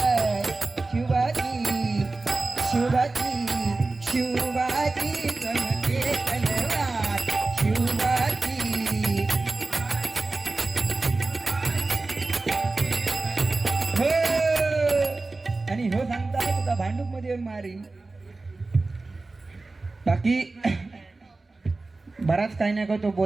शिवाजी शिवाजी शिवाजी चमके तलवार शिवाजी हो आणि हो सांगता तुका भांडूप मध्ये येऊन मारी बाकी बराच काही नाही का तो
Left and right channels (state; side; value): quieter; left; 3.4 dB